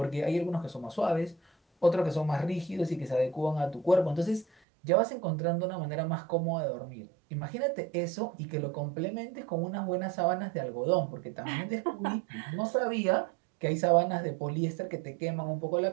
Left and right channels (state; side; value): drops out; left; at 4.5 s